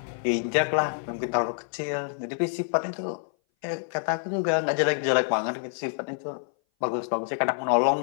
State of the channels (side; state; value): right; silent; 58 dB below the other